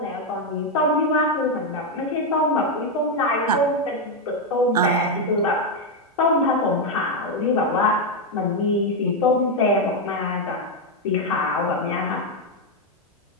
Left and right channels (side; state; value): both; normal; correlation 0.04